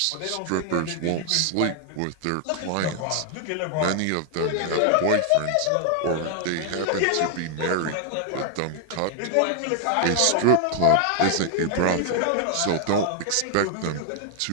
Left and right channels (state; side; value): different; both; correlation 0.00